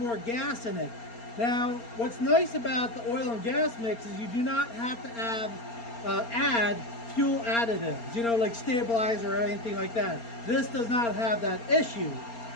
gas in it. Now, what's nice about the oil and gas mix is you do not have to add fuel additives, you know, like stabilizer or anything like that. This does not have that issue.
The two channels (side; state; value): right; late; 4.3 ms